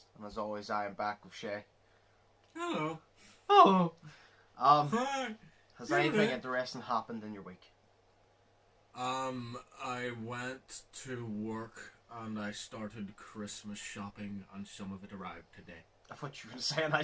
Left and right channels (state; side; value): identical; both; correlation 1.00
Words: And as always, I am back with Shay. Hello. Oh! Hi. Has anything interesting happened in your week? I went to work and I started Christmas shopping and some of it arrived today. I thought you were saying I